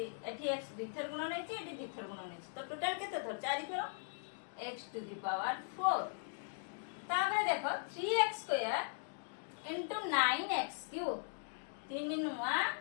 x द्विथर गुणन हैछि एठी द्विथर गुणन हैछि तो टोटल केते थर 4 थर x टू द पावर 4 ताबे देखो 3x square into 9x cube 3 नुआ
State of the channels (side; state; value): right; silent; digital silence